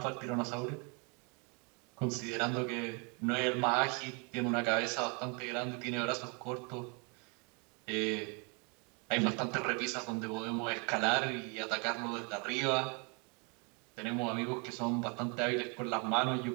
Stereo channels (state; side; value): quieter; left; 33.8 dB